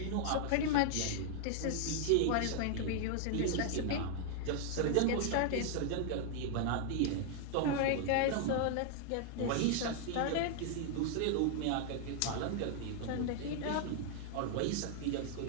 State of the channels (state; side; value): different; both; correlation 0.00